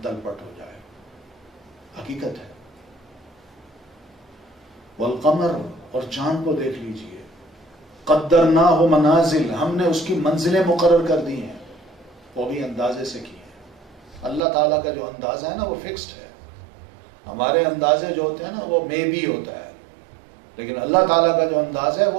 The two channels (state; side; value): drops out; left; at 14.4 s